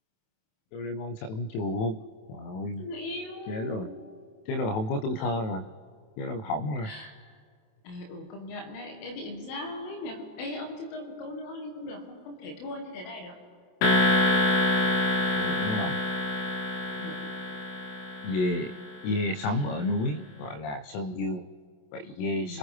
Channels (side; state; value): right; late; 27 ms